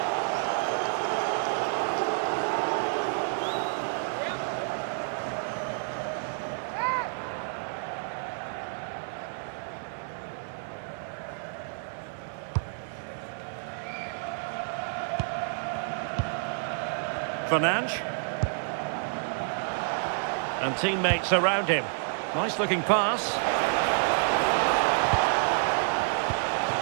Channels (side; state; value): left; silent; 58 dB below the other